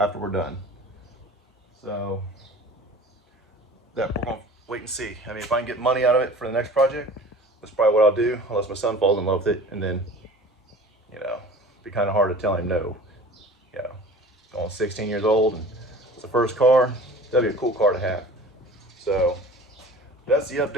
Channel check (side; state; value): both; normal; correlation 0.42